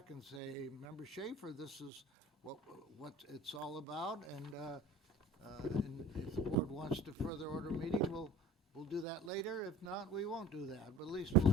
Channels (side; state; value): both; normal; correlation 0.42